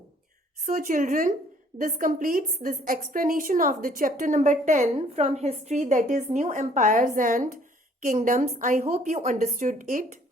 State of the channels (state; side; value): normal; both; correlation 0.60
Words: So children, this completes this explanation of the chapter number 10 from history, that is New Empires and Kingdoms. I hope you understood it.